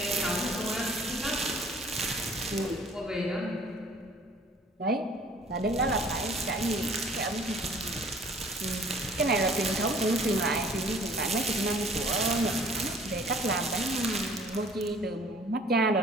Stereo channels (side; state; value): both; normal; correlation 0.53